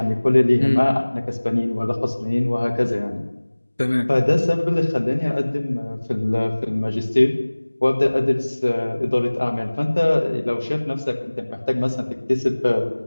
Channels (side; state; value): both; inverted; correlation -1.00